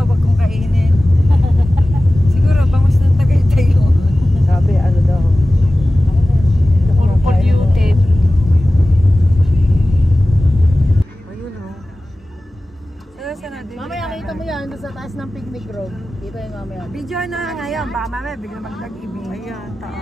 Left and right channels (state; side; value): normal; both; correlation 0.96